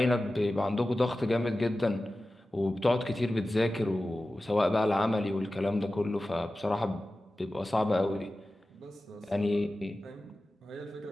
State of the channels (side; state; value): both; normal; correlation 0.95